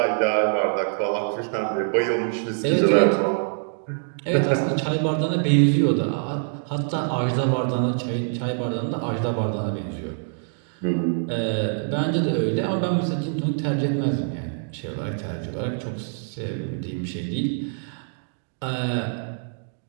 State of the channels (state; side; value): silent; left; digital silence